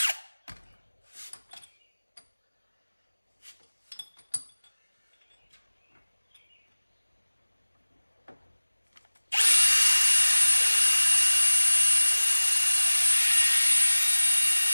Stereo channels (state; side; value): inverted; both; correlation -1.00